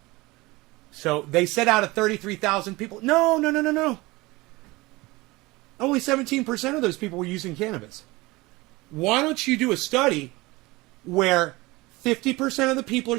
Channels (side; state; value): left; quieter; 21.9 dB